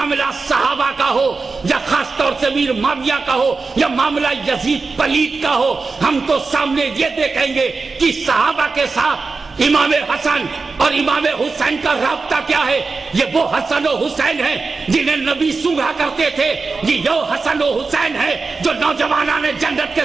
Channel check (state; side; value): quieter; left; 4.2 dB